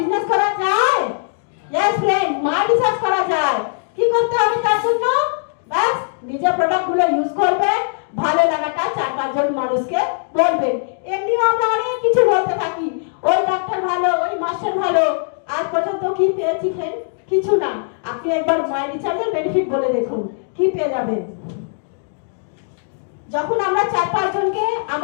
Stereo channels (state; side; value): silent; right; digital silence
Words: করা যায়? यस फ्रेंड, মাই রিসার্চ করা যায়। কি করতে হবে তার জন্য? বাস নিজের প্রোডাক্টগুলো ইউজ করবেন, ভালো লাগাটা 4-5 জন মানুষকে বলবেন। এমনিও আমরা অনেক কিছু বলতে থাকি, ওই ডাক্তার ভালো, ওই মাস্টার ভালো। আজ পর্যন্ত কি পেয়েছি ফ্রেন্ড? কিছু না। আপনি একবার মাই রিসার্চের বেনিফিট বলে দেখুন, কি পেয়ে যাবেন। যখন আমরা 4-5 জনকে